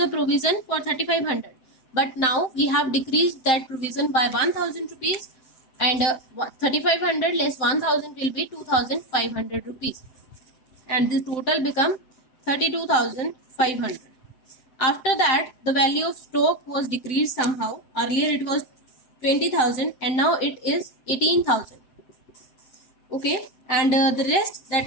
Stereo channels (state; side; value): late; right; 7.8 ms